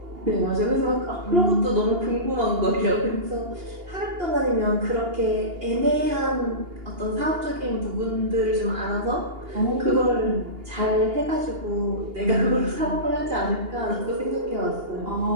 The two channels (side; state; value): left; late; 2.8 ms